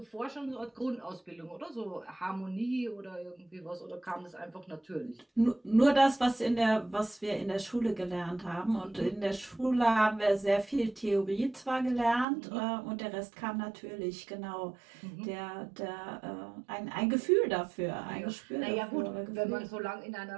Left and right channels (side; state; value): left; drops out; at 12.2 s